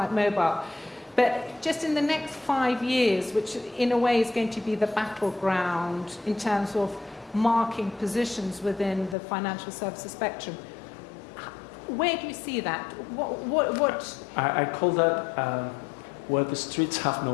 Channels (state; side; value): drops out; right; at 9.2 s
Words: mobile. But just in the next 5 years, which in a way is going to be the battleground in terms of marking positions within the financial services spectrum, where do you see that? What? I call that where the streets have